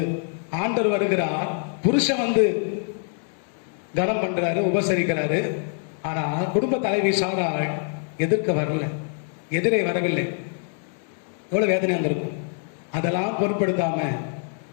ஆண்டவர் வருகிறார், புருஷன் வந்து கனம் பண்றாரு, உபசரிக்கிறாரு. ஆனா குடும்ப தலைவி சாராள் எதிர்க்க வரல, எதிரே வரவில்லை. எவ்வளவு வேதனையா இருந்திருக்கும். அதெல்லாம் பொருட்படுத்தாம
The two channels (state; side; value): silent; right; 55 dB below the other